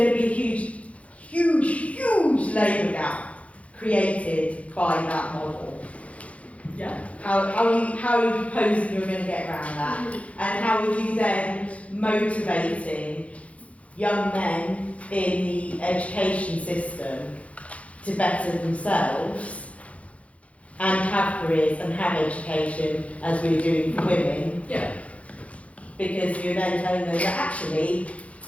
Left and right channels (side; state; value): right; late; 0.065 ms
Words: to be a huge labour gap created by that model. Yeah. How are you proposing you're going to get around that? And how are you then motivating young men in the education system to better themselves and have careers and have education as we're doing for women? Yeah. Because you're then telling them that actually